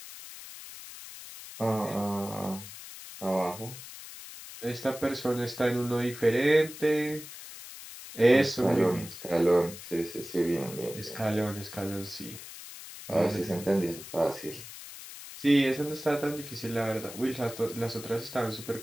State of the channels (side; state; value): left; noise; hiss, 13 dB below the sound